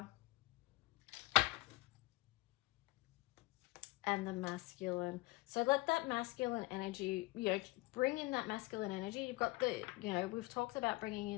And the masculine. So let that masculine energy, you know, bring in that masculine energy. You've got the, you know, we've talked about bringing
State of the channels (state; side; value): quieter; right; 22.1 dB